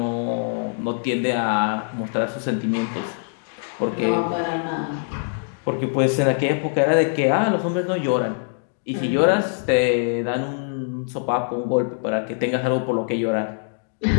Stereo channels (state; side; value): silent; right; digital silence